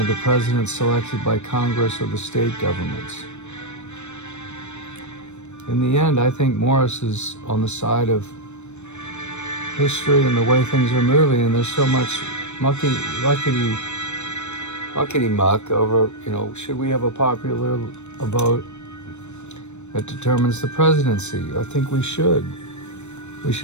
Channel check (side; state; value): right; late; 0.82 ms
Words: the president selected by Congress or the state governments. In the end, I think Morris is on the side of history and the way things are moving, and there's so much muckety-muck over, should we have a popular vote that determines the presidency? I think we should. We